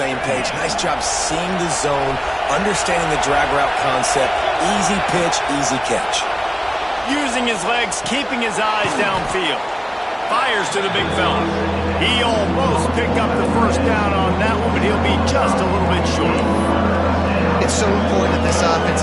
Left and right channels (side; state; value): both; identical; correlation 1.00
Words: page. Nice job seeing the zone, understanding the drag route concept. Easy pitch, easy catch. Using his legs, keeping his eyes downfield. Fires to the big fella. He almost picked up the first down on that one, but he'll be just a little bit short. It's so important that this offense